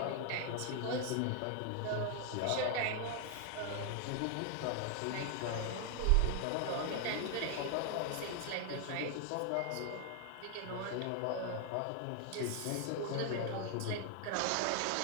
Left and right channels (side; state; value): both; different; correlation 0.00